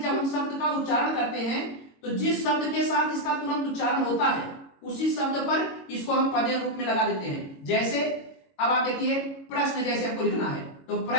जब हम शब्द का उच्चारण करते हैं तो जिस शब्द के साथ इसका तुरंत उच्चारण होता है उसी शब्द पर इसको हम पदेन रूप में लगा देते हैं। जैसे अब आप देखिए प्रश्न जैसे आपको लिखना है तो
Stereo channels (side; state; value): right; late; 22 ms